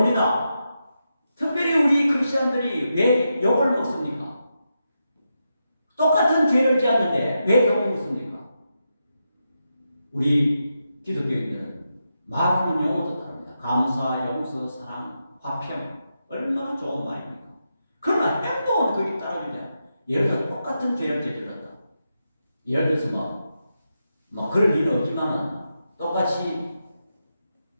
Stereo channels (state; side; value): inverted; both; correlation -0.86